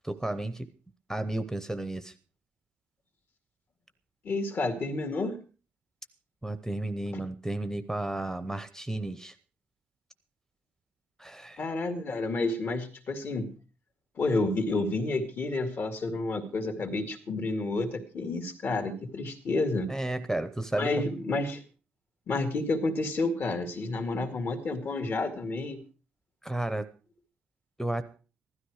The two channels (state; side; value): normal; both; correlation 0.79